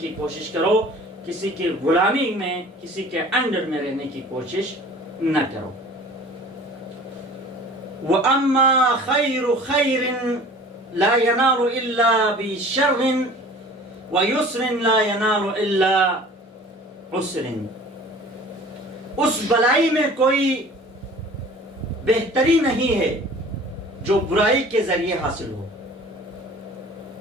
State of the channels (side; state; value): both; normal; correlation 0.45